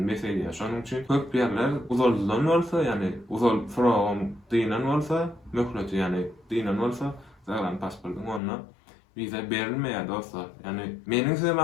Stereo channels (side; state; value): right; drops out; at 8.4 s